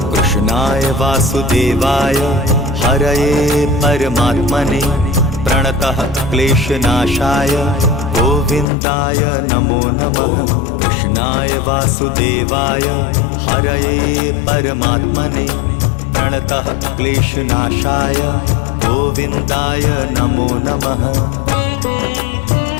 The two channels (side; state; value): right; drops out; at 8.7 s